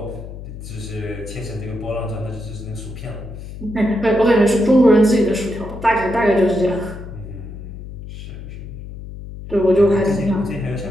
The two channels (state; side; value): noise; left; hum, 11 dB below the sound